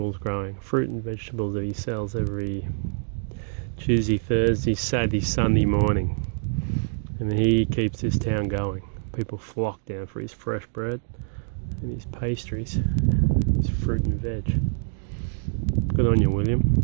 growing, fruit and vegetables that he sells every Tuesday, Thursday, Saturday, Sunday morning. And he keeps this town going. People flock down for his fresh bread and his pastries, his fruit and veg. Good on you, William.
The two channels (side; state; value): left; silent; digital silence